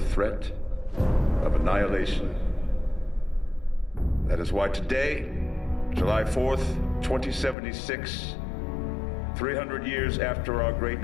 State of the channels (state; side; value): drops out; right; at 7.6 s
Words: of annihilation. That is why today, July 4th, 2076, 300 years after our great